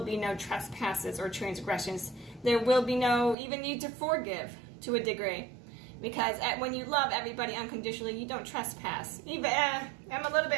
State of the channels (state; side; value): drops out; left; at 3.4 s